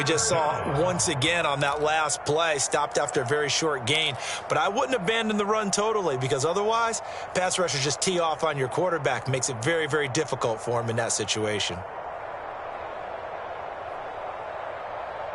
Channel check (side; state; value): both; identical; correlation 1.00